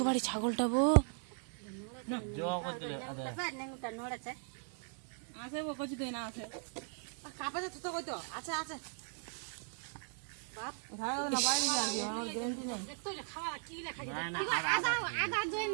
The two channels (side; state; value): left; silent; 52 dB below the other